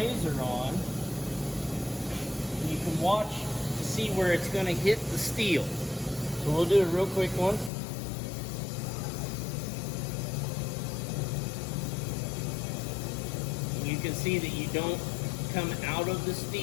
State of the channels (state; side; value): drops out; right; at 7.7 s